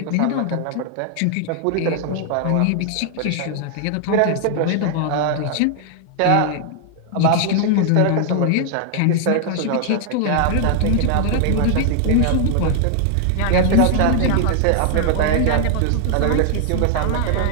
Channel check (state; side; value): different; both; correlation 0.00